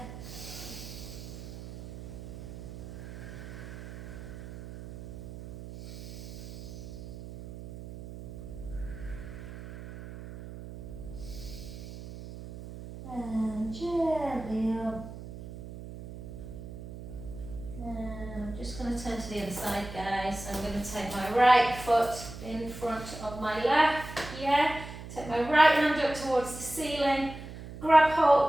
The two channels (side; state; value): right; noise; hum, 12 dB below the sound